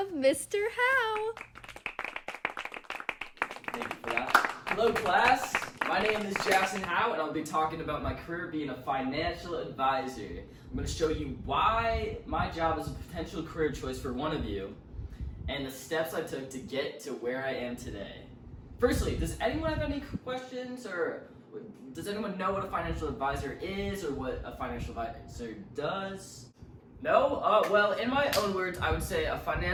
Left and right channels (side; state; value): both; identical; correlation 1.00